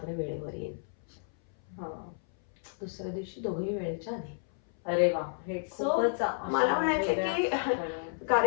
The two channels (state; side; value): silent; right; 57 dB below the other